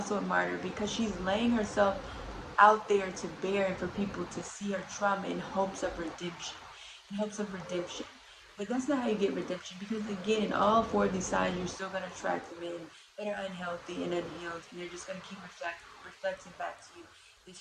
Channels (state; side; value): identical; both; correlation 1.00